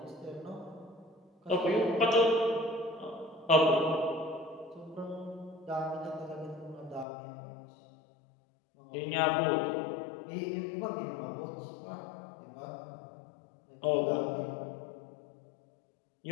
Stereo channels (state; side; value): drops out; right; at 7.1 s